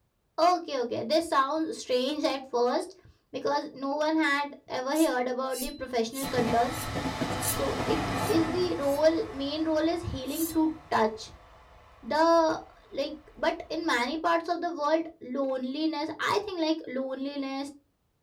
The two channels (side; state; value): both; identical; correlation 1.00